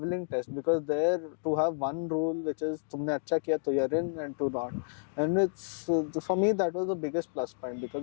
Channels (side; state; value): right; silent; digital silence